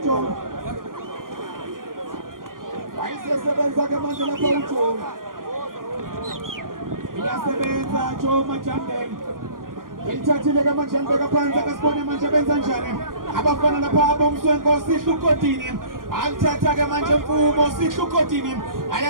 wayisebenza ke manje lapha uJomo iyasebenza Jomo Majambe elithathile ke manje ambeka phansi akasibone manje benza njani abafana lapha abomswenko sihlukotini alithatha ke manje Mfumo sihlukotini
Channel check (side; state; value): left; late; 0.90 ms